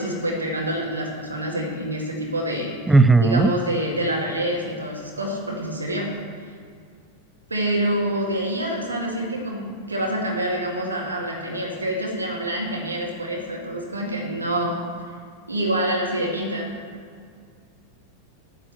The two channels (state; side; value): normal; both; correlation 0.04